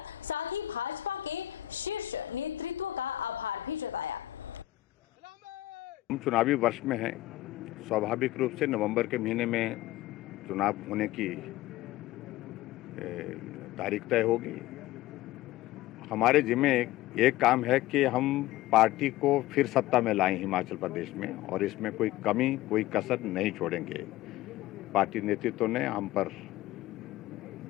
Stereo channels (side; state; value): right; quieter; 15.8 dB